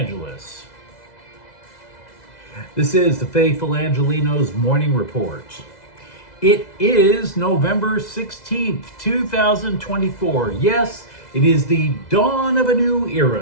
This is the faithful Angelenos Morning Report. It is November 16th, 2024. Yes, it is the dawn of a new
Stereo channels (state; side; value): late; right; 2.0 ms